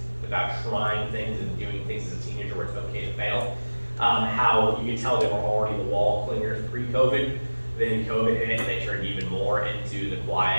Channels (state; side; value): inverted; both; correlation -1.00